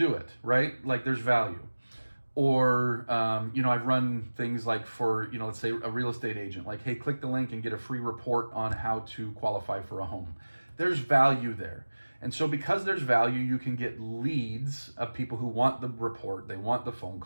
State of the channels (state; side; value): inverted; both; correlation -1.00